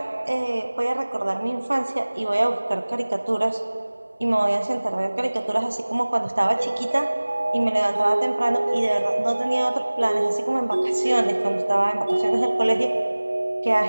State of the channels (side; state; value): both; inverted; correlation -1.00